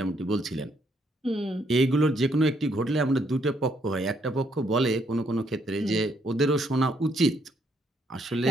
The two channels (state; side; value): normal; both; correlation 0.72